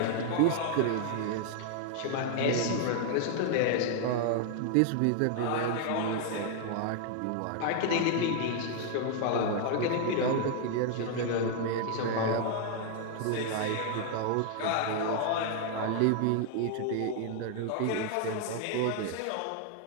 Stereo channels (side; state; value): both; different; correlation 0.00